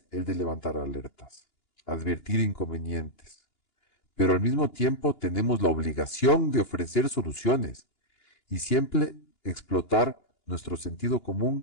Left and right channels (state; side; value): late; right; 2.9 ms